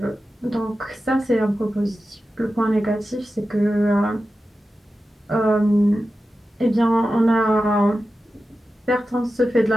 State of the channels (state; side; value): normal; both; correlation 0.92